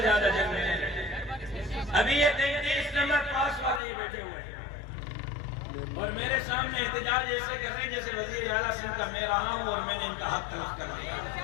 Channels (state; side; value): drops out; right; at 3.8 s